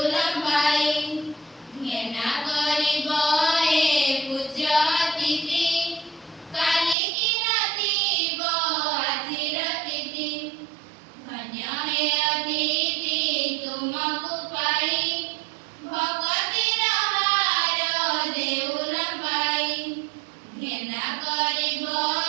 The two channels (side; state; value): left; drops out; at 7.0 s